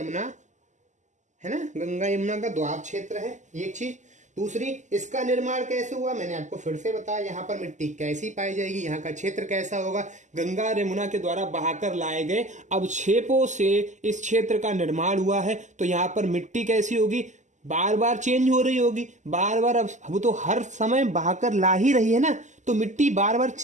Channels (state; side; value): late; left; 0.35 ms